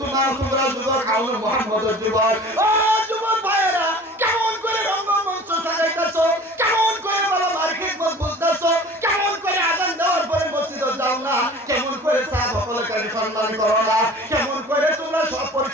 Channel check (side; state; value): both; normal; correlation 0.43